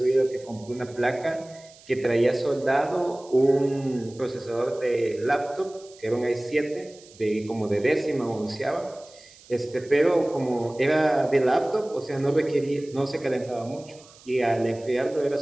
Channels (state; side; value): noise; right; hiss, 24 dB below the sound